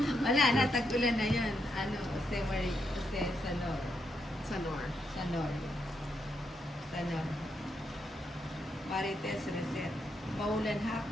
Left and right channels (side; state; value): both; normal; correlation 0.80